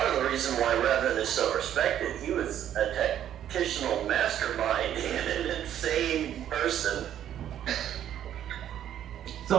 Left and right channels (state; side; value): quieter; left; 10.6 dB